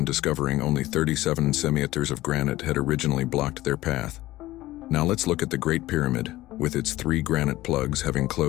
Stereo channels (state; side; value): quieter; right; 16.8 dB